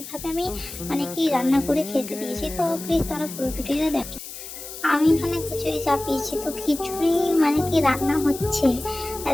আমি কি রান্না করে খেতে দিয়েছি, তো প্লিজ তোমরা পুরো ভিডিওটা দেখো। আমি এখানে খিচুড়ি চাপিয়েছি, তো খিচুড়ি রান্না হচ্ছে।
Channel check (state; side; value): noise; left; hiss, 11 dB below the sound